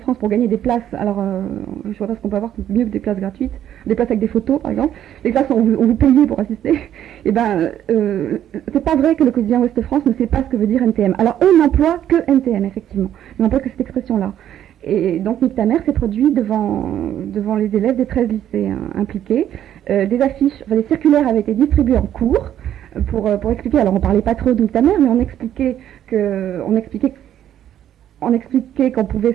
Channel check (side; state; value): left; quieter; 10.9 dB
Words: pour gagner des places. Alors, je vois pas ce qu'on peut avoir mieux que des places gratuites, des places avec des photos, par exemple. Des places où on vous payait pour assister. Et c'est pas vrai que le quotidien Ouest France ne sait pas ce que veut dire NTM. Alors, eux n'emploient que NTM, effectivement. Ils n'emploient que cette expression-là. Et donc Nick ta mère s'est produit devant les élèves des 13 lycées impliqués. Des affiches, des circulaires avaient été distribués en cours pour expliquer. Alors on parlait pas trop de Nick ta mère, mais on expliquait qu'on